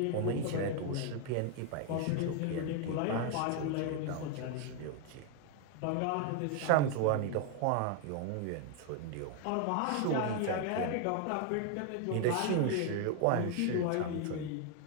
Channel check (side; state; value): both; different; correlation 0.01